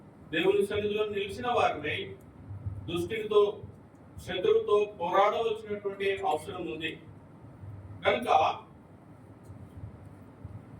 దేవుని సన్నిధిలో నిలిచిన వారిని దుష్టునితో, శత్రువుతో పోరాడవలసినటువంటి అవసరం ఉంది. కనుక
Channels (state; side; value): identical; both; correlation 1.00